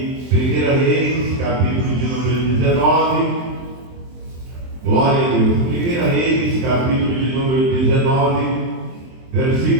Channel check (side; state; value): left; late; 23 ms